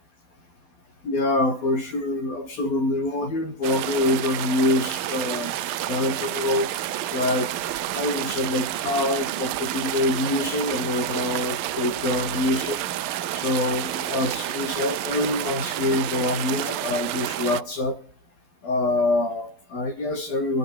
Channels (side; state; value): right; late; 11 ms